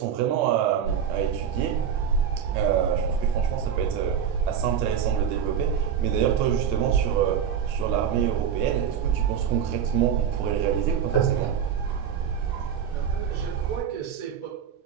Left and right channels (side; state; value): left; quieter; 8.1 dB